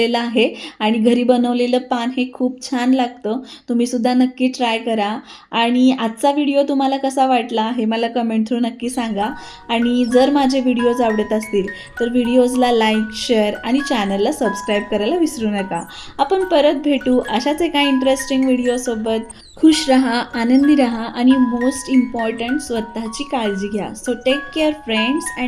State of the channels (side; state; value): both; identical; correlation 1.00